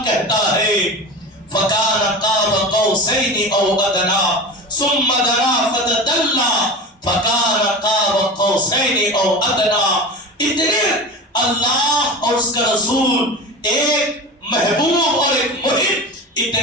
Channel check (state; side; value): normal; both; correlation 0.29